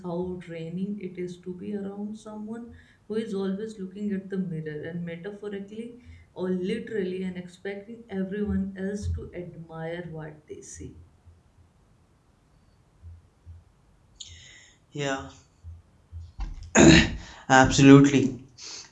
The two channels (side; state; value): both; identical; correlation 1.00